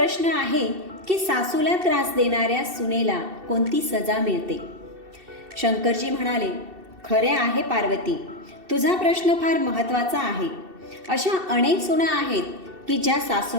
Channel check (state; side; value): late; left; 2.7 ms